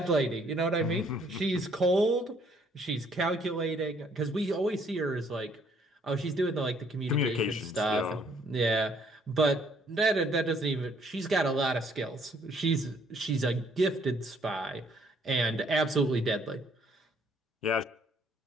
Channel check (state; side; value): normal; both; correlation 0.64